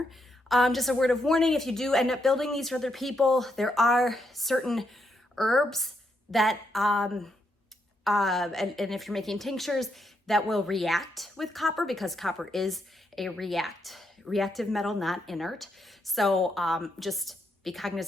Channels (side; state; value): both; normal; correlation 0.79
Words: Just a word of warning, if you do end up building these for other people, there are certain herbs that, and if you're making tinctures, that will react with copper, because copper is a reactive metal, not inert. So just be